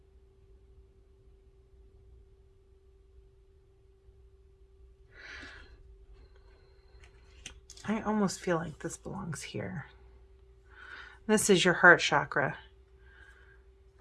I almost feel like this belongs here. This is your heart chakra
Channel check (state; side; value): identical; both; correlation 1.00